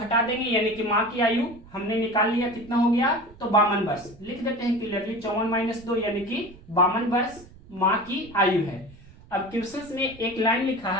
देंगे यानी कि माँ की आयु हमने निकाल लिया, कितना हो गया, तो 52 वर्ष। लिख देते हैं क्लियरली 54 - 2 यानी कि 52 वर्ष माँ की आयु है। अब क्वेश्चन में एक लाइन लिखा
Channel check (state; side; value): noise; right; rumble, 22 dB below the sound